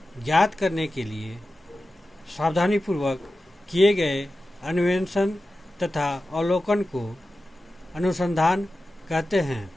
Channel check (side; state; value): both; normal; correlation 0.93